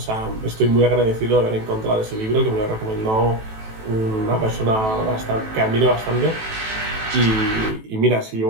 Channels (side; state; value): left; late; 18 ms